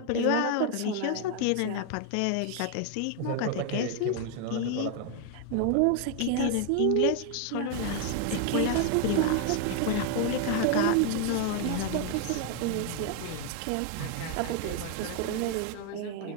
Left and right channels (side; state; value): both; different; correlation 0.00